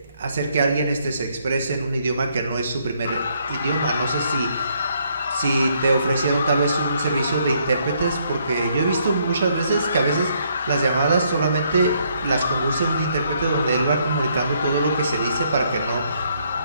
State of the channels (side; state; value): both; inverted; correlation -0.70